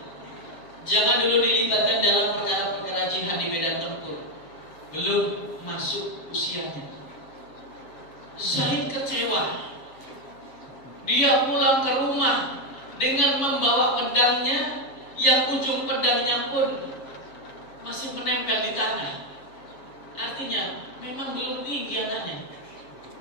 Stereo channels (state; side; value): late; right; 7.1 ms